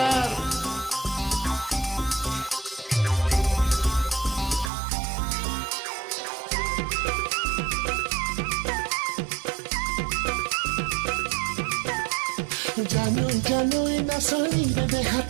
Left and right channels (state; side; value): drops out; left; at 4.7 s